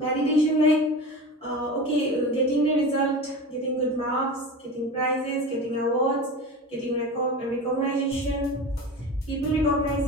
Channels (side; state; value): both; normal; correlation 0.30